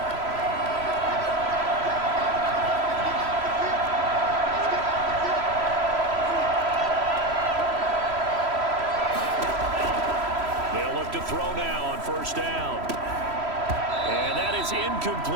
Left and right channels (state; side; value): late; left; 3.1 ms